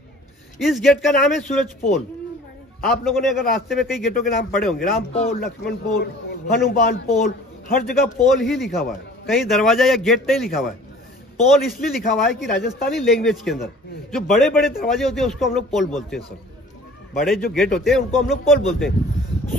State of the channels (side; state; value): both; normal; correlation 0.48